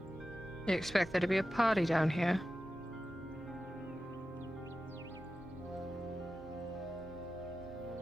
You expect there to be a party down here?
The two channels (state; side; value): normal; both; correlation 0.93